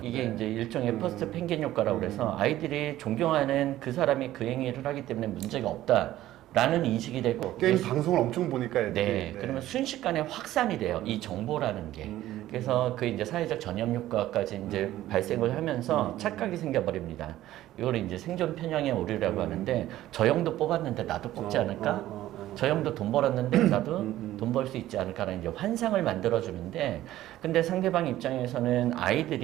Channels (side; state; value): left; quieter; 14.4 dB